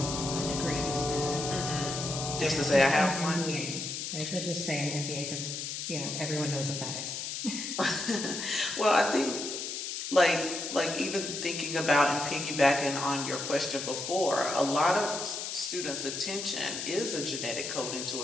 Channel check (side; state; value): left; noise; hiss, 5 dB below the sound